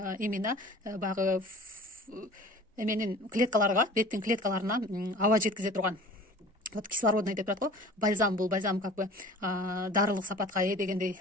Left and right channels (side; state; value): both; normal; correlation 0.44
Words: баягы эменин клеткаларга, беттин клеткаларына аба жеткизе турган. Вот кислородный деп турат го. Бальзам, бул бальзам как бы дарылык сапатка дегендей